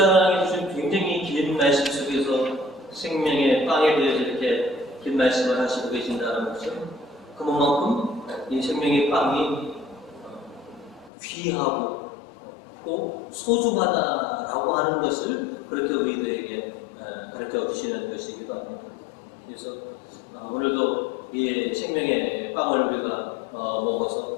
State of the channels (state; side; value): drops out; right; at 11.1 s